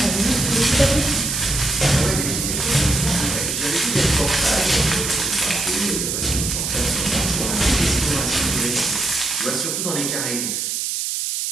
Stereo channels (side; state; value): right; noise; hiss, 1 dB below the sound